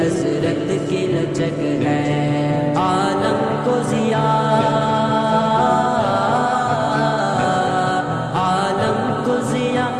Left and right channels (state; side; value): identical; both; correlation 1.00